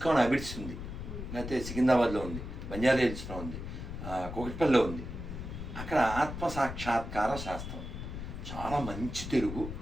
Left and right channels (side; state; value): left; noise; rumble, 8 dB below the sound